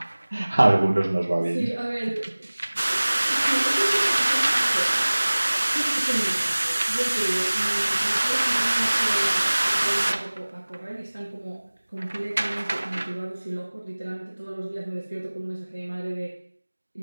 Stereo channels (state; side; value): inverted; both; correlation -1.00